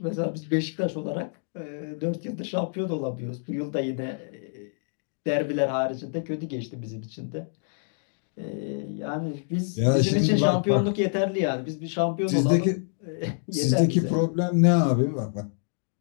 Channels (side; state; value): right; silent; digital silence